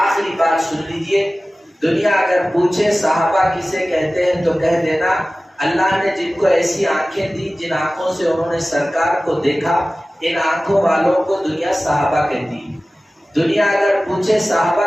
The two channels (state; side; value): normal; both; correlation 0.96